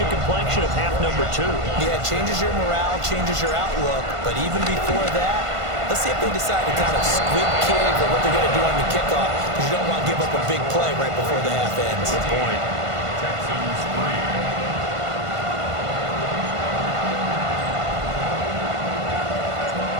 the complexion of half number 2. Yeah, it changes your morale, changes your outlook. But even before that, let's see if they decide to kind of squib kick or what they're going to do on the kickoff, because you don't want to give up a big play right before the half ends. Good point. Texans 3.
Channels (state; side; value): late; left; 1.5 ms